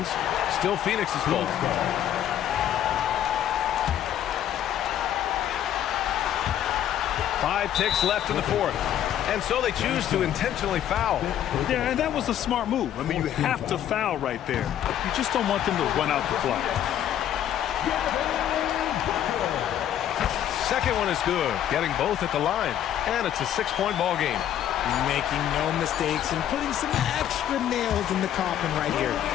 Still Phoenix's fault. 5 ticks left in the fourth. And so they choose to intentionally foul. Yeah, and that was a smart move. I mean, you have to foul right there. You just don't want them to run out the clock. Second one is good. Getting both at the line. And it's a 6-point ball game. Making no mistakes and putting some extra nails in the coffin right here.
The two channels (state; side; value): quieter; right; 10.8 dB